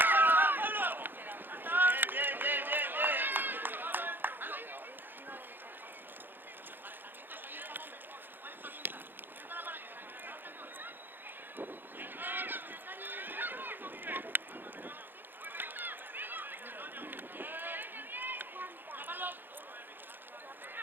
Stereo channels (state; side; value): late; left; 0.095 ms